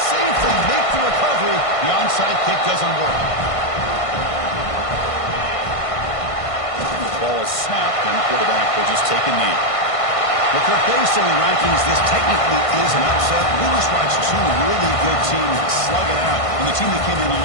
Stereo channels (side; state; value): right; late; 1.5 ms